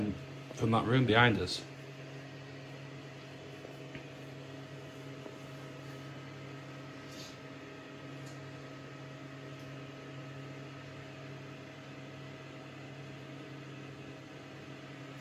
from that room behind us.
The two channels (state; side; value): identical; both; correlation 1.00